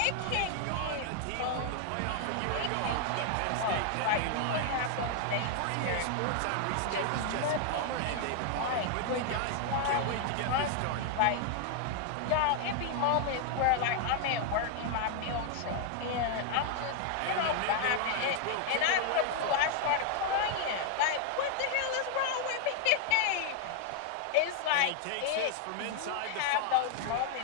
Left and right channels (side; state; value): both; different; correlation 0.00